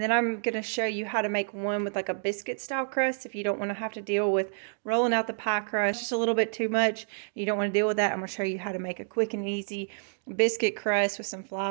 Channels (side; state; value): left; silent; digital silence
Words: I'm going to show you how to make one with like a biscuit style crust if you don't want to have to deal with rolling out the pie crust just a little bit too much. You don't want to deal with that. I'm going to show you how to make a quick and easy biscuit crust with some